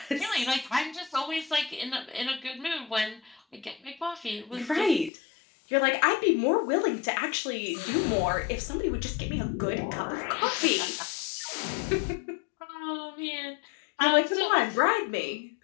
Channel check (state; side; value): drops out; right; at 5.1 s